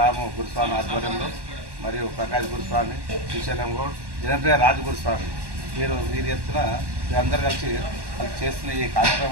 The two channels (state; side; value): late; left; 1.1 ms